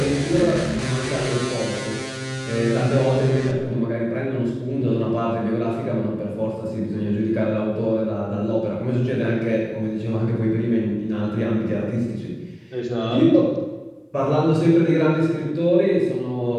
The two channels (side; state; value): both; identical; correlation 1.00